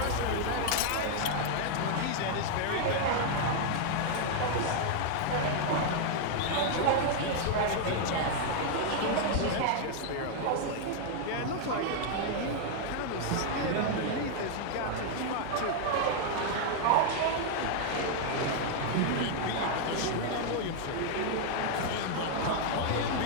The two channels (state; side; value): different; both; correlation 0.00